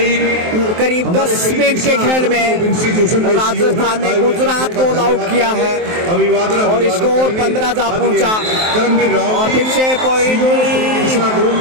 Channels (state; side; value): late; left; 23 ms